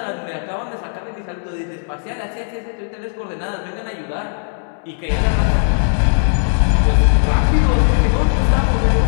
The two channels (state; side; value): silent; right; digital silence